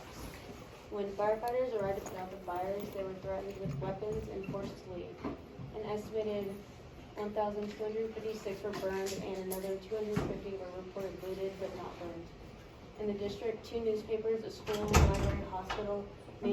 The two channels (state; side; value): identical; both; correlation 1.00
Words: When firefighters arrived to put out the fires, they were threatened with weapons and forced to leave. An estimated 1,256 were burned and another 250 were reported looted but not burned. In the district, 2 newspapers, a school, library, hospital,